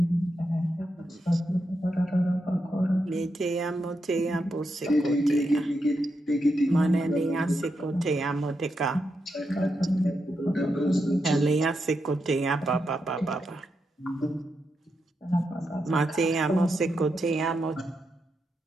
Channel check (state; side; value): normal; both; correlation 0.84